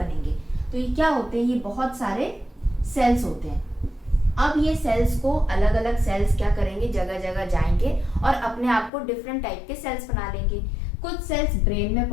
तो ये क्या होते हैं, ये बहुत सारे सेल्स होते हैं। अब ये सेल्स को अलग अलग सेल्स क्या करेंगे, जगह जगह जाएंगे और अपने आप को डिफरेंट टाइप के सेल्स बना लेंगे। कुछ सेल्स ब्रेन में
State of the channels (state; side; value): drops out; right; at 8.9 s